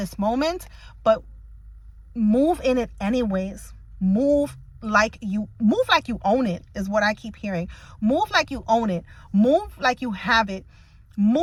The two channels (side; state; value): both; identical; correlation 1.00